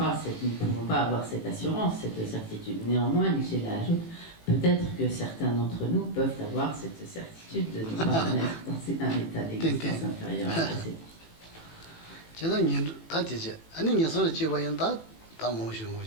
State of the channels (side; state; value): right; late; 18 ms